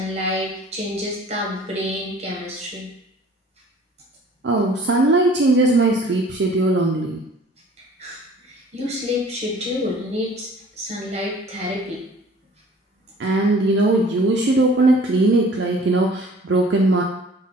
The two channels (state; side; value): normal; both; correlation 0.50